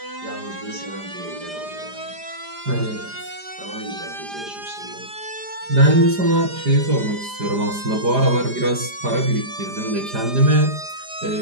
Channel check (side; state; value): left; late; 4.9 ms